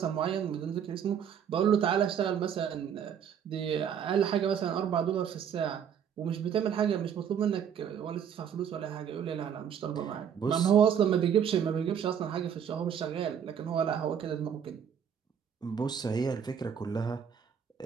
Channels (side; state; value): left; quieter; 8.2 dB